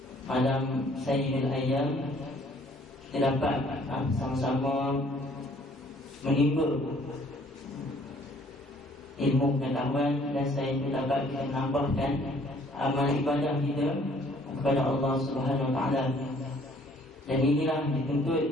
malam Sayyidul Ayyam, kita dapat sama-sama menimba ilmu pengetahuan, dan saya pun dapat menambahkan amal ibadah kita kepada Allah Subhanahu wa taala. Dan inilah dituntut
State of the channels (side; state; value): both; normal; correlation 0.59